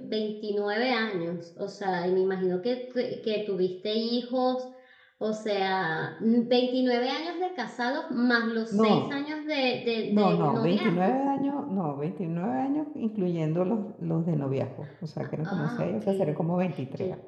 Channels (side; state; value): both; identical; correlation 1.00